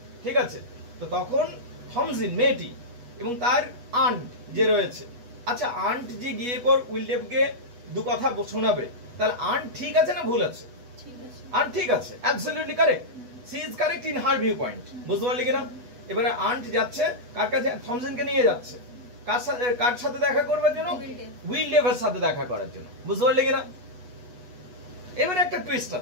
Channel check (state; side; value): late; left; 8.2 ms